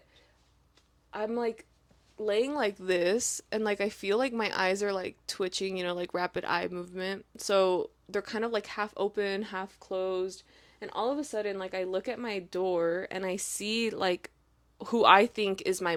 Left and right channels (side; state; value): both; identical; correlation 1.00